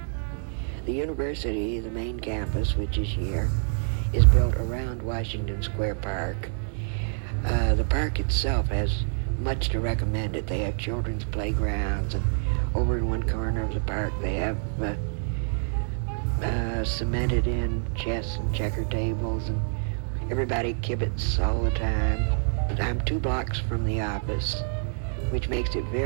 The university, the main campus, which is here, is built around Washington Square Park. The park itself has much to recommend it. They have children's playgrounds, and over in one corner of the park, they have cemented in chess and checker tables, and everybody kibitz all the time. I'm 2 blocks from the office, which makes it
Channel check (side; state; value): left; silent; 60 dB below the other